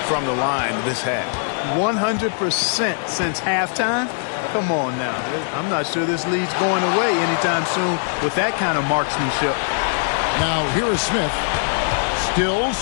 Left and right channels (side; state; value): right; silent; digital silence